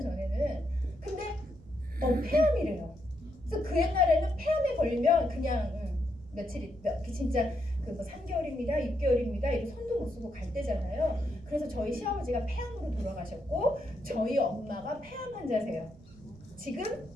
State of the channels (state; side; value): noise; right; rumble, 22 dB below the sound